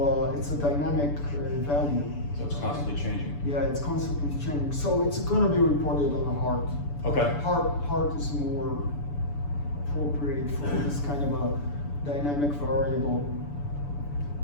dynamic value. So it's constantly changing. Yeah, it's constantly changing. So it's going to be reported on the heart. Okay. Heart is more appropriate for this kind of a dynamic variable.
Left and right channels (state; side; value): late; right; 6.9 ms